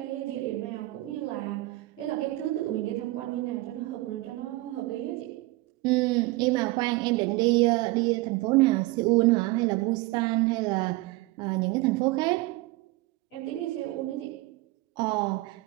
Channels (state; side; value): quieter; left; 20.4 dB